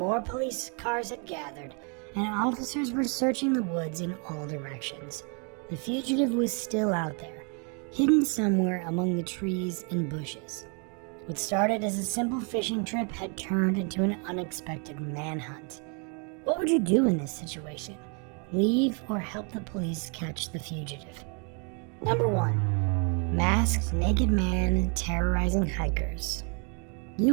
police cars had gathered, and officers were searching the woods in all directions. The fugitive was still out there, hidden somewhere among the trees and bushes. What started as a simple fishing trip had turned into an unexpected manhunt. What would you do in this situation? Leave or help the police catch the fugitive? Number 1. Masked naked man terrorizing hikers.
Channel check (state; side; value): quieter; left; 37.2 dB